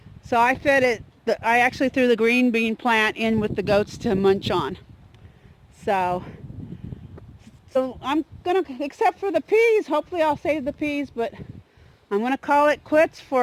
So I fed it, I actually threw the green bean plant in with the goats to munch on. So I'm gonna, except for the peas, hopefully I'll save the peas, but I'm gonna call it quits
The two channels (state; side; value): identical; both; correlation 1.00